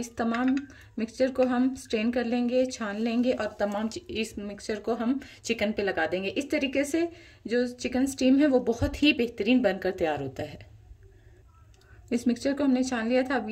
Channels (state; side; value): identical; both; correlation 1.00